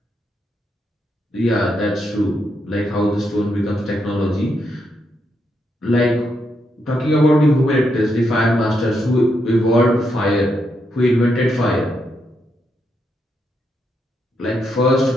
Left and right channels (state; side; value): normal; both; correlation 0.80